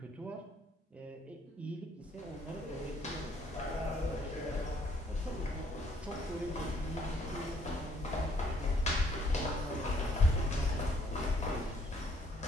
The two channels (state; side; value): normal; both; correlation 0.65